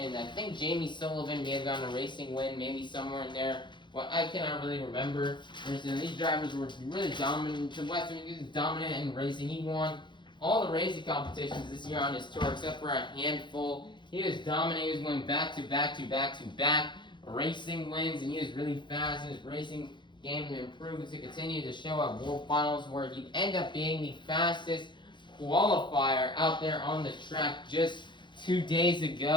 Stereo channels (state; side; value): late; right; 0.23 ms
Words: I think Jamie Sullivan may have gotten a racing win, maybe somewhere in there. Well, I cannot really remember. These drivers were really dominant. Weston was dominant in racing. He won all the racing competitions this year on his tour, except for a handful. He was dominant. He was going back to back racing wins, and he was really fast in his racing game and improved to continue to show at World Finals, where he'd end up being the fastest qualifier out there on the track just 2 days